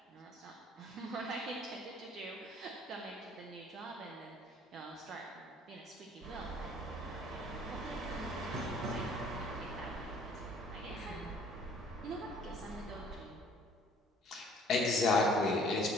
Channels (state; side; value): normal; both; correlation 0.56